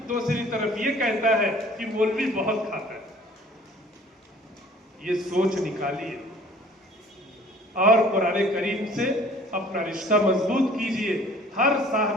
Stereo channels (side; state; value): both; normal; correlation 0.52